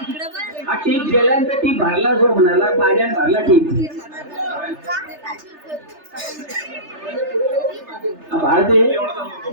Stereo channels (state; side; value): late; left; 3.3 ms